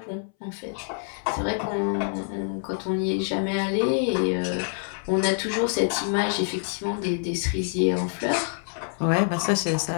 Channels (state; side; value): silent; right; 61 dB below the other